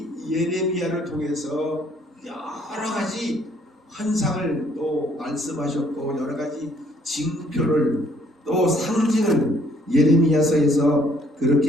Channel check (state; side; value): normal; both; correlation 0.64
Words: 예레미야를 통해서 여러 가지 환상을 또 말씀하셨고 여러 가지 징표를 또 상징을 예레미야서에서